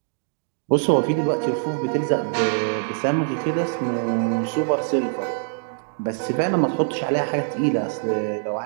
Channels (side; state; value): left; silent; digital silence